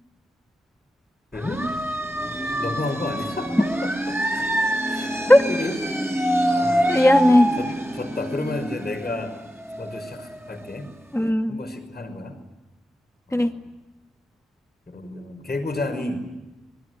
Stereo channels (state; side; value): normal; both; correlation 0.90